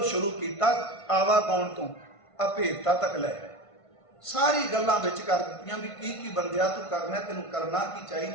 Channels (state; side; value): late; right; 1.5 ms